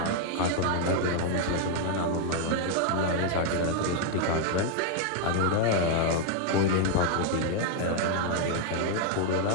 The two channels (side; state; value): both; different; correlation 0.00